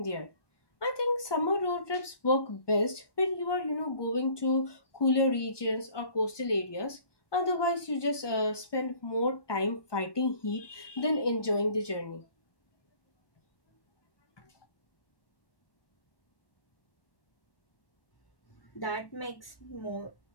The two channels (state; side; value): late; right; 1.2 ms